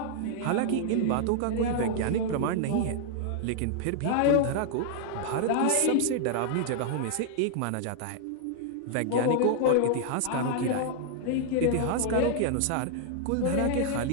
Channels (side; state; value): both; different; correlation -0.01